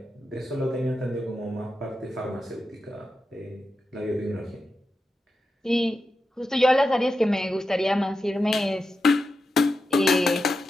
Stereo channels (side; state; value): both; normal; correlation 0.89